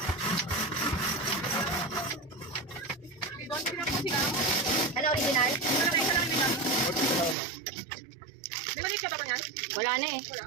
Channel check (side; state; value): left; drops out; at 7.4 s